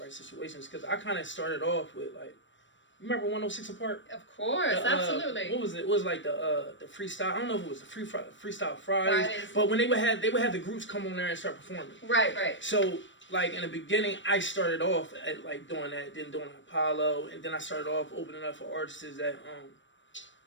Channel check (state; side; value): late; right; 0.54 ms